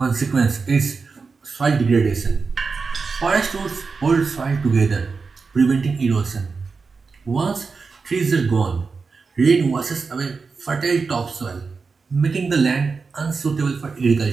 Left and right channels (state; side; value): quieter; left; 4.7 dB